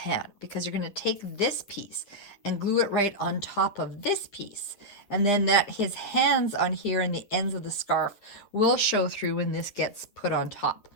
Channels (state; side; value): late; right; 9.3 ms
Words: because you're going to take this piece and glue it right on top of this piece. And then that his hands on here and the ends of the scarf will show through when this gets put on top.